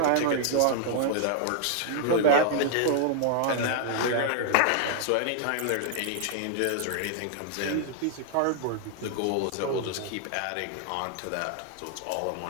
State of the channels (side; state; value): both; different; correlation 0.00